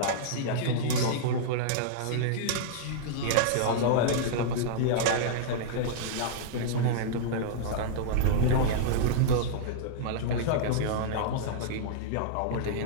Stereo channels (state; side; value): different; both; correlation -0.02